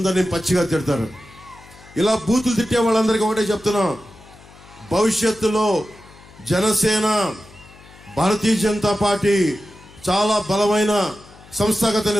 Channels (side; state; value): left; noise; hum, 23 dB below the sound